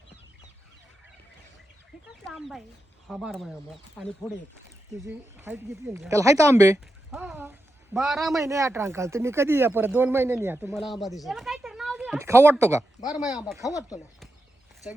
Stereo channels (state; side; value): normal; both; correlation 0.88